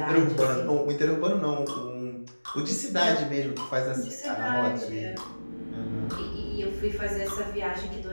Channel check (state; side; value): inverted; both; correlation -1.00